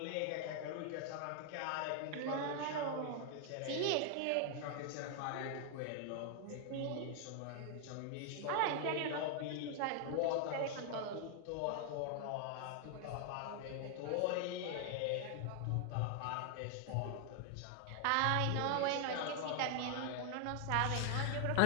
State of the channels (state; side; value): different; both; correlation 0.00